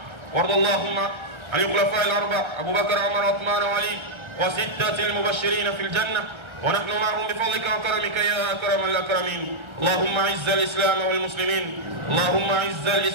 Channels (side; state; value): left; late; 1.3 ms